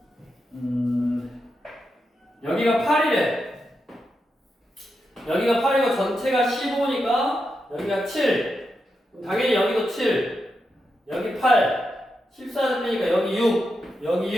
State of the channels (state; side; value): normal; both; correlation 0.86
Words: 여기가 8이래. 여기가 8이고 전체가 15니까 여기가 7. 당연히 여기도 7. 여기 8. 14를 빼니까 여기 6. 여기